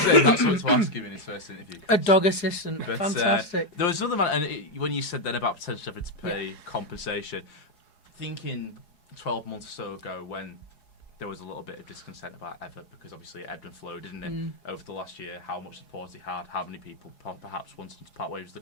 in, that's what to ask him in his first interview. A dog assistant. But, Fantastic. There was another man, and when you said then about potentially having to pay compensation, thinking 12 months or so ago when there was a little bit of discontent about Evatt, because obviously it ebbed and flowed, didn't it, over the last year, how much support he had, how many people perhaps wanted him to part ways with the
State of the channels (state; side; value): late; right; 4.7 ms